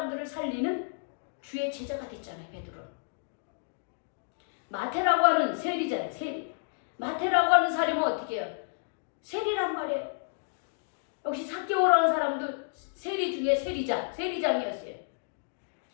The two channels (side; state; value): right; silent; digital silence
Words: 살리는 주의 제자가 됐잖아요. 베드로. 마태라고 하는 세리잖아요. 세리. 마태라고 하는 사람은 어떻게 해요? 세리란 말이에요. 역시 삭개오라는 사람도 세리 중에 세리장이었어요.